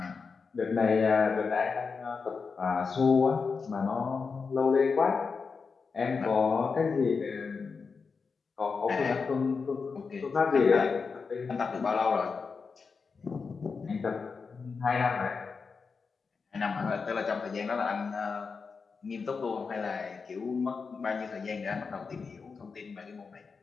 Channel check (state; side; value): quieter; right; 5.1 dB